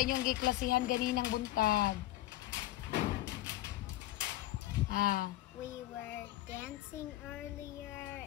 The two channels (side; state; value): right; quieter; 16.1 dB